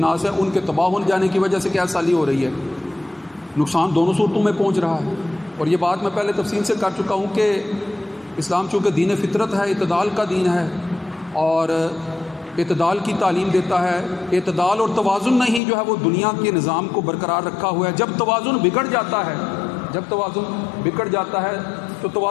ہیں ان کے تباہ ہو جانے کی وجہ سے قحط سالی ہو رہی ہے۔ نقصان دونوں صورتوں میں پہنچ رہا ہے، اور یہ بات میں پہلے تفصیل سے کر چکا ہوں کہ اسلام چونکہ دین فطرت ہے، اعتدال کا دین ہے، اور اعتدال کی تعلیم دیتا ہے، اعتدال اور توازن نہیں جو ہے وہ دنیا کے نظام کو برقرار رکھا ہوا ہے۔ جب توازن بگڑ جاتا ہے، جب توازن بگڑ جاتا ہے تو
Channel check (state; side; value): drops out; right; at 15.6 s